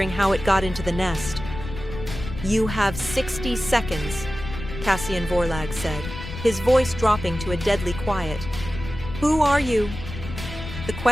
how it got into the nest. "You have 60 seconds, Cassian Vorlag said, his voice dropping to a deadly quiet. "Who are you?" The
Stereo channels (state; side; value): noise; left; rumble, 9 dB below the sound